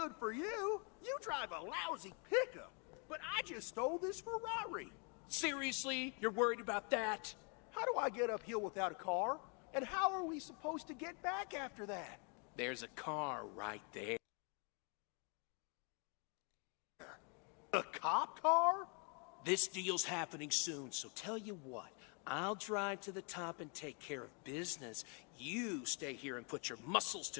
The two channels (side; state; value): right; quieter; 36.3 dB